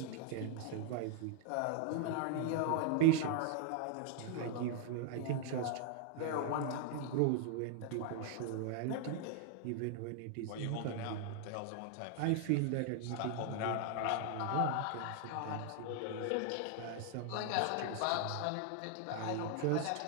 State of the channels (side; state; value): both; different; correlation 0.00